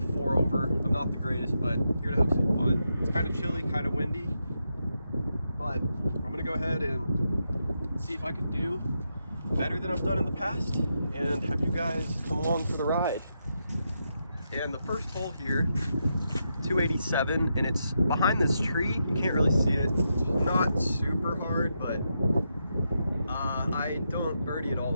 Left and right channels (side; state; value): both; inverted; correlation -0.84